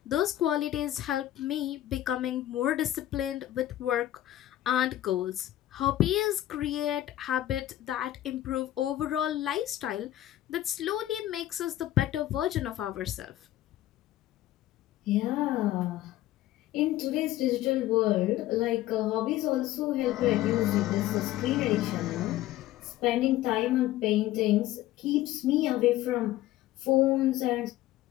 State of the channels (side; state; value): right; quieter; 14.2 dB